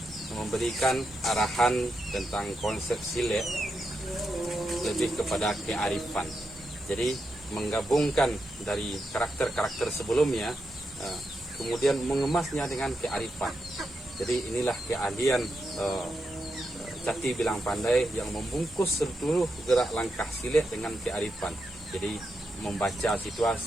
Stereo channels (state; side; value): normal; both; correlation 0.85